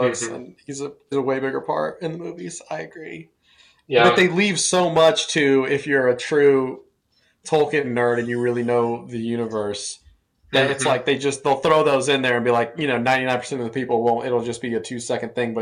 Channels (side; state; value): both; identical; correlation 1.00